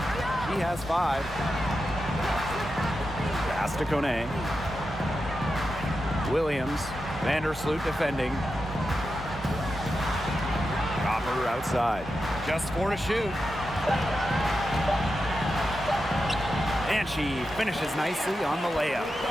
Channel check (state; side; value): normal; both; correlation 0.89